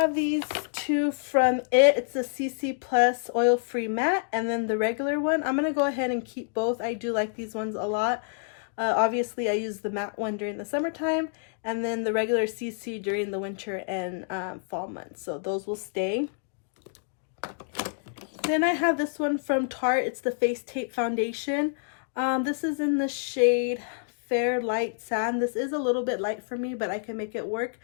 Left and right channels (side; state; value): right; silent; digital silence